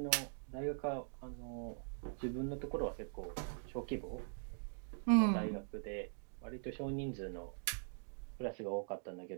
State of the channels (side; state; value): left; silent; digital silence